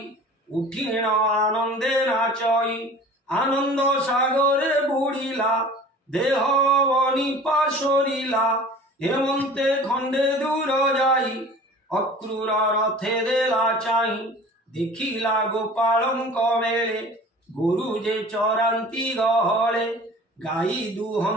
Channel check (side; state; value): both; normal; correlation 0.43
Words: উঠিণ আনন্দে নাচই। আনন্দ সাগরে বুড়িলা, দেহ বনিপা সরিলা। হেমন্তে খণ্ডে দূর যাই, অক্রূর রথে দেলা চাই। দেখিলা গোপালঙ্ক মেলে, গরু যে চরান্তি গহলে। গাই